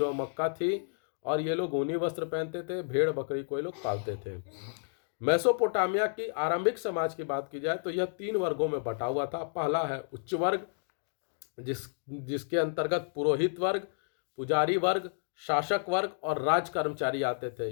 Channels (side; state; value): right; silent; digital silence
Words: मक्का थी और ये लोग ऊनी वस्त्र पहनते थे। भेड़ बकरी को ये लोग पालते थे। मेसोपोटामिया की आरंभिक समाज की बात की जाए तो यह 3 वर्गों में बटा हुआ था। पहला है उच्च वर्ग, जिसके अंतर्गत पुरोहित वर्ग, पुजारी वर्ग, शासक वर्ग और राज कर्मचारी आते थे।